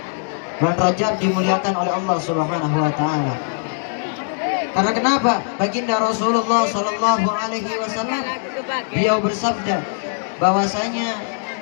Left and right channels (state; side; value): silent; right; digital silence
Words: Bulan Rajab dimuliakan oleh Allah Subhanahu wa taala. Karena kenapa? Baginda Rasulullah sallallahu alaihi wasallam beliau bersabda bahwasanya